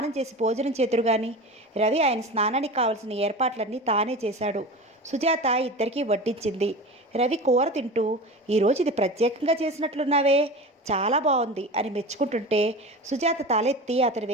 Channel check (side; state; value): both; normal; correlation 0.31